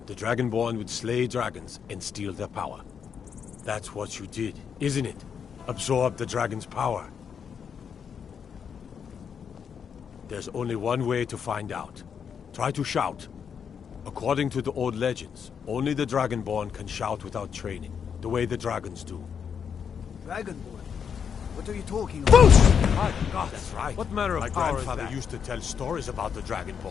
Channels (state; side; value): quieter; right; 7.2 dB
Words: the Dragonborn would slay dragons and steal their power. That's what you did, isn't it? Absorb the dragon's power. There's only one way to find out. Try to shout. According to the old legends, only the Dragonborn can shout without training, the way the dragons do. Dragonborn? What are you talking about? My God, that's right. What manner of power is that? My grandfather used to tell stories about the